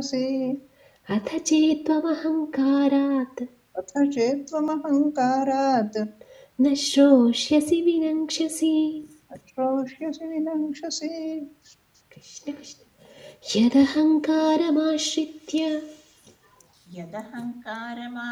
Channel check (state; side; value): identical; both; correlation 1.00